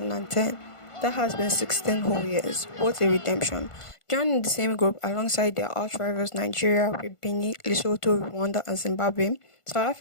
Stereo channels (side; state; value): right; late; 1.5 ms